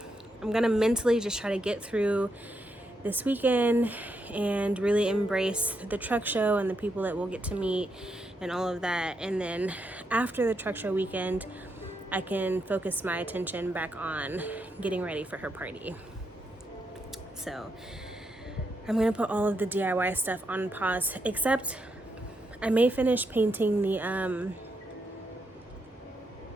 mentally just try to get through this weekend and really embrace the truck show and the people that we'll get to meet and all of that. And then after the truck show weekend, I can focus my attention back on getting ready for her party. So I'm gonna put all of the DIY stuff on pause, except I may finish painting the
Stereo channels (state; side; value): normal; both; correlation 0.81